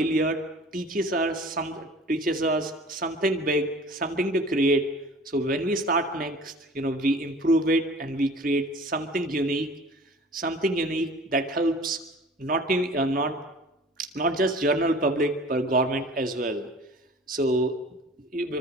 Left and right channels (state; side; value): normal; both; correlation 0.44